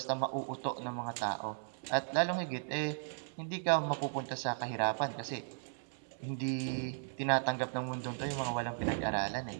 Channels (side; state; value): left; silent; 54 dB below the other